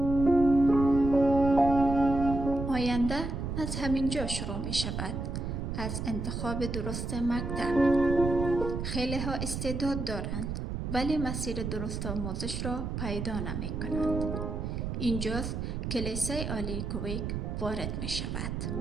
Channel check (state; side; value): noise; right; rumble, 4 dB below the sound